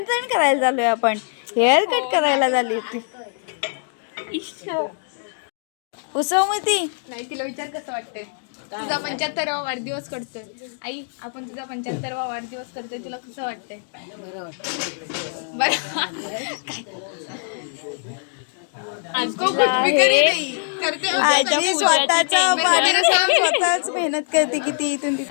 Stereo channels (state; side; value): silent; right; digital silence